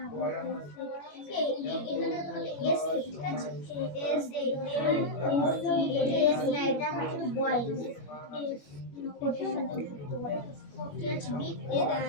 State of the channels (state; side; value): late; right; 21 ms